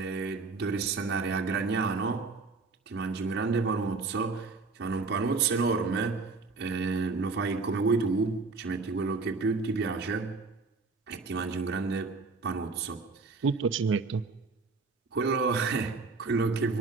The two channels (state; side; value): quieter; left; 4.1 dB